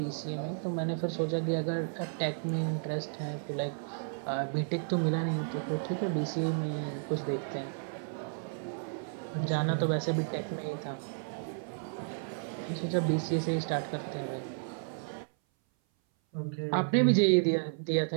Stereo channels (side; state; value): left; silent; 56 dB below the other